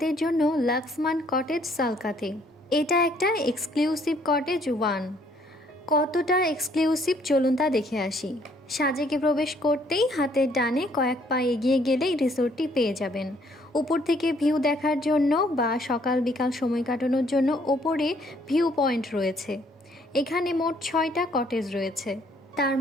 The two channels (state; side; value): normal; both; correlation 0.65